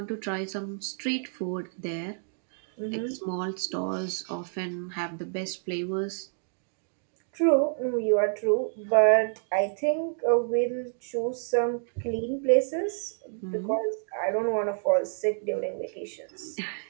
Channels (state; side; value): silent; left; digital silence